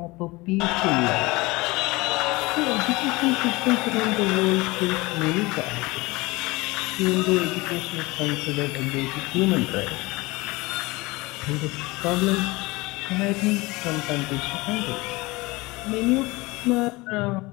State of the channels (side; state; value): right; quieter; 22.6 dB